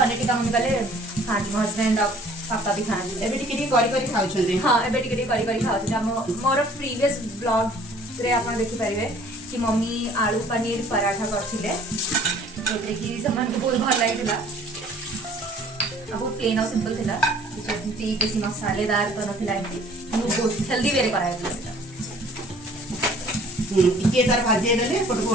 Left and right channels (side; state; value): both; normal; correlation 0.54